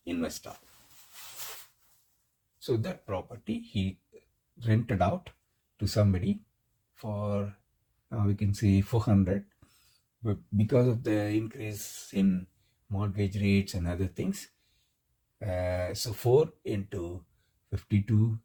investor. So that property he rented out to somebody for we can say 400, but because of the increase in mortgage rates and other things, so 4 into 52,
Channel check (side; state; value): both; identical; correlation 1.00